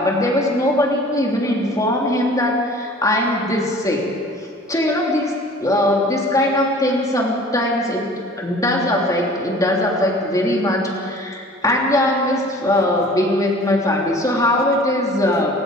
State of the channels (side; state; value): both; normal; correlation 0.47